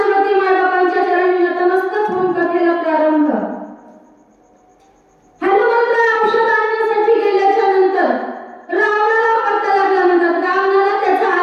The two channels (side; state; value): both; identical; correlation 1.00